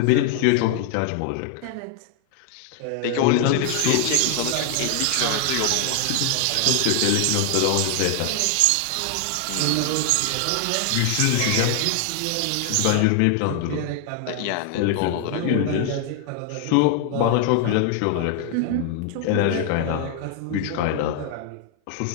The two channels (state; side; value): different; both; correlation 0.00